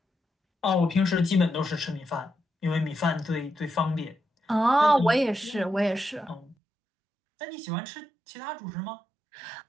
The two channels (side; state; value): left; drops out; at 6.6 s